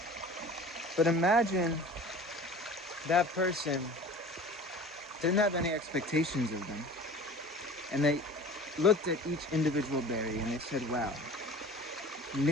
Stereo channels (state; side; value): normal; both; correlation 0.41